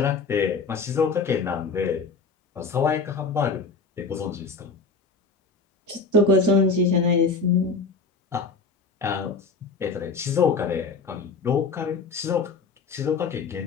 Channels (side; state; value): right; quieter; 4.4 dB